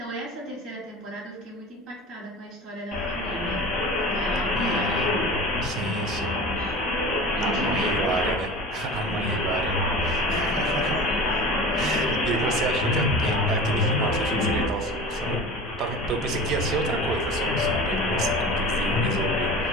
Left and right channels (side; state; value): both; normal; correlation 0.36